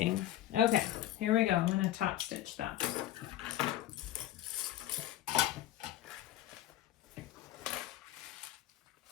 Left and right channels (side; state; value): right; quieter; 13.2 dB